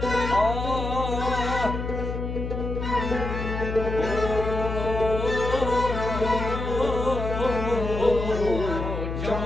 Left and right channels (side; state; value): left; noise; hum, 4 dB below the sound